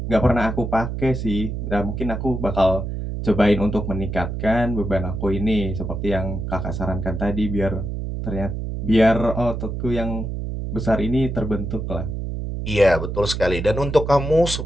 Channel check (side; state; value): right; noise; hum, 4 dB below the sound